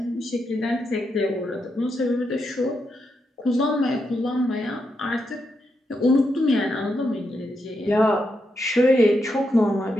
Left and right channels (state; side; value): normal; both; correlation 0.83